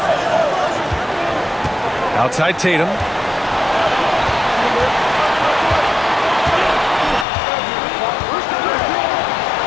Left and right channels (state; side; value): drops out; right; at 7.2 s